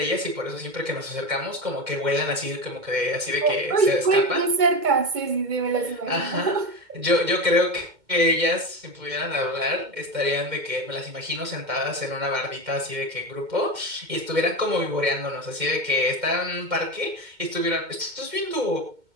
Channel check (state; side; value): late; left; 2.1 ms